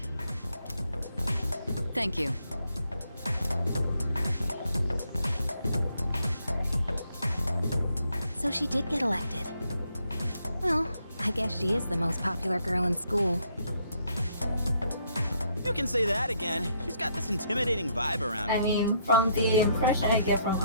Thank you. So she did get elected. Well, I guess she is the most popular girl in school. You can say that again. She's got this intimidating vibe around her. I mean, from the impression I get from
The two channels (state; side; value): inverted; both; correlation -0.72